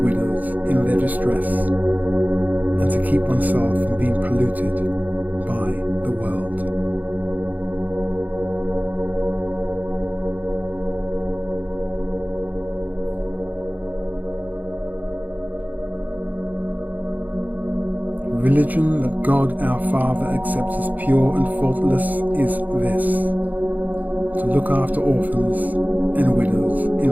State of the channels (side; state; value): left; late; 0.081 ms